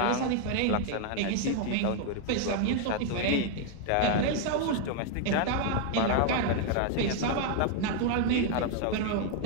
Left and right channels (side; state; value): both; different; correlation 0.00